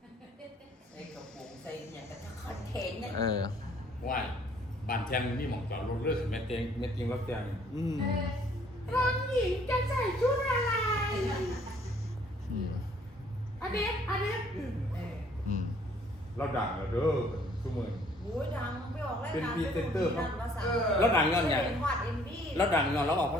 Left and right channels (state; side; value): normal; both; correlation 0.60